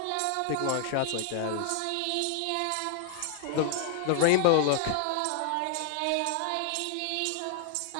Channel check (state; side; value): different; both; correlation 0.00